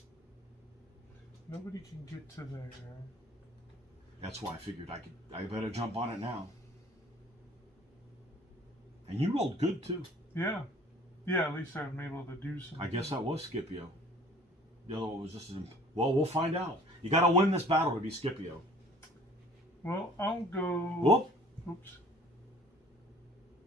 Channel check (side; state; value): both; normal; correlation 0.52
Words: Nobody can get to there. That's why I figured I better jump on it now. And you rolled good too. Yeah. Yeah, at least I'm able to do something. I guess that was Scipio. The other one was just well, we'll find out. You got to win this battle to be Scipio. Well, I'll go. Whoop. Oops.